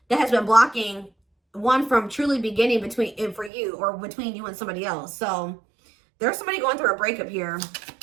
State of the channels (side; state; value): left; drops out; at 3.5 s